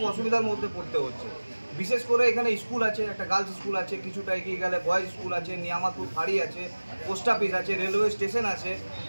অসুবিধার মধ্যে পড়তে হচ্ছে। বিশেষ করে এখানে স্কুল আছে, একটা গার্লস স্কুল আছে, কিছুটা এগিয়ে গেলে বয়েজ স্কুল আছে, নিয়ামাতুর ফাঁড়ি আছে, পোস্ট অফিস আছে, রেলওয়ে স্টেশন আছে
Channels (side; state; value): both; inverted; correlation -1.00